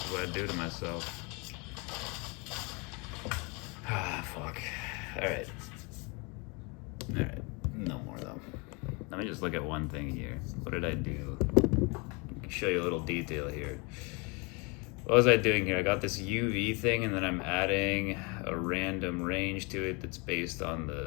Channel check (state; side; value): quieter; right; 30.2 dB